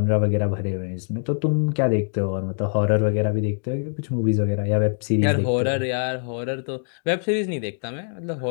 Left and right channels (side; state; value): right; silent; digital silence